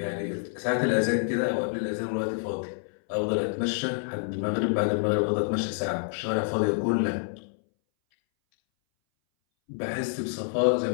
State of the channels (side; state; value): right; silent; 60 dB below the other